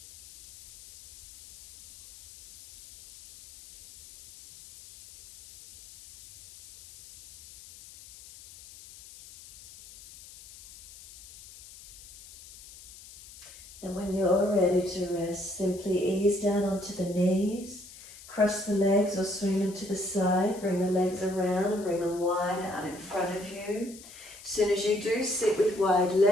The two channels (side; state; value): left; noise; hiss, 19 dB below the sound